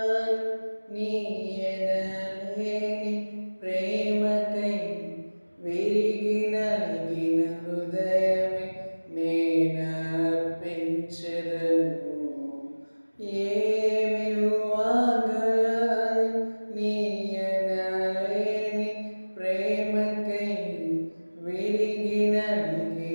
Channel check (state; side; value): inverted; both; correlation -1.00